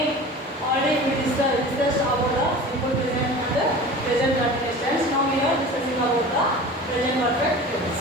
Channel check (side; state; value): both; normal; correlation 0.37